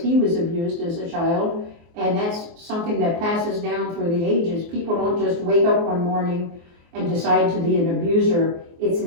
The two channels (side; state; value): left; late; 24 ms